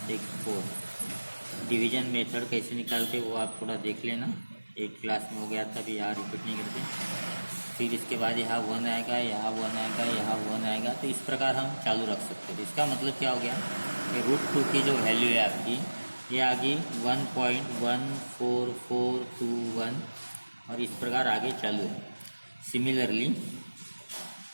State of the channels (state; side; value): inverted; both; correlation -1.00